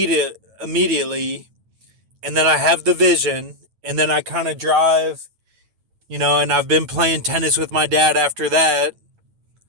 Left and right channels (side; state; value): left; late; 9.1 ms